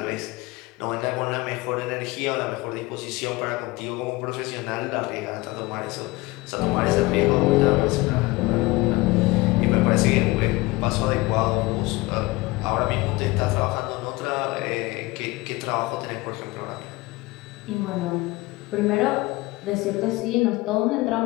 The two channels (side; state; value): right; quieter; 21.6 dB